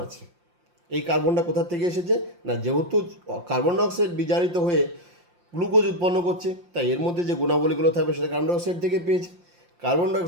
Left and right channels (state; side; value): late; left; 5.7 ms